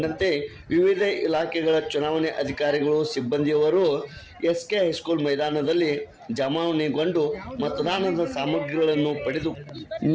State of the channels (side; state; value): both; identical; correlation 1.00